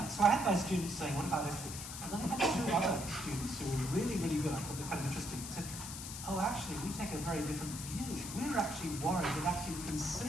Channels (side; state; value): left; noise; hiss, 8 dB below the sound